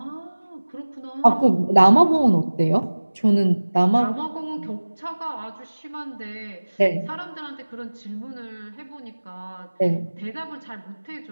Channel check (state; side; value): inverted; both; correlation -1.00